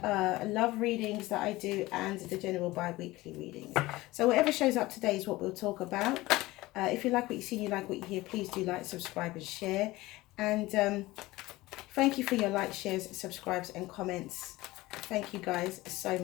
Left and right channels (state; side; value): quieter; right; 19.2 dB